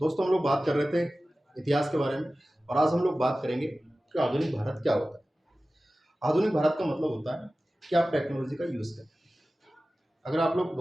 हम लोग बात कर रहे थे इतिहास के बारे में और आज हम लोग बात करेंगे कि आधुनिक भारत क्या होता है। आधुनिक भारत का मतलब होता है कि आप टेक्नोलॉजी का यूज़ करें। अगर आप लोग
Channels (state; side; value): normal; both; correlation 0.96